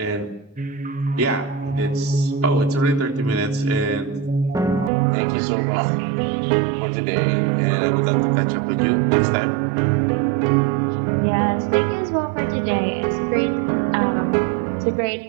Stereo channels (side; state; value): left; drops out; at 4.9 s